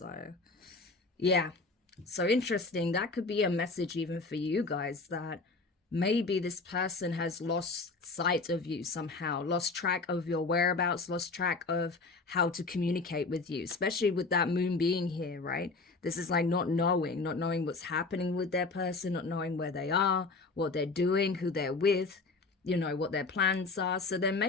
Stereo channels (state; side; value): quieter; right; 3.8 dB